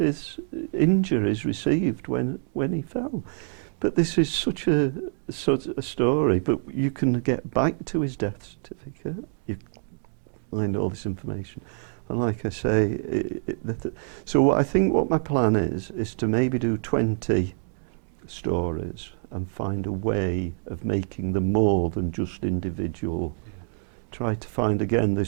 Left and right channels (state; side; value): silent; left; digital silence